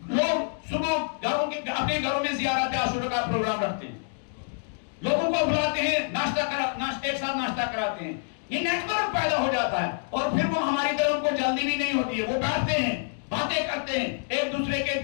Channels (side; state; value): right; silent; digital silence